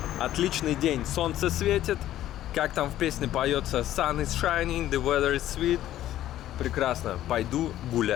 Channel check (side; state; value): right; quieter; 13.0 dB